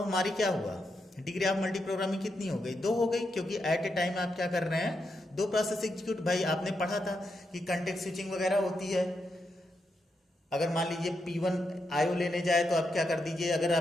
हमारी क्या हुआ, डिग्री ऑफ मल्टी प्रोग्रामिंग कितनी हो गई, 2 हो गई। क्योंकि एट ए टाइम आप क्या कर रहे हैं, 2 प्रोसेस एग्जीक्यूट। भाई आपने पढ़ा था कि कंटेक्स्ट स्विचिंग वगैरह होती है। अगर मान लीजिए P1 IO लेने जाए तो आप क्या कर दीजिए, अगर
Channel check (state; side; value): normal; both; correlation 0.84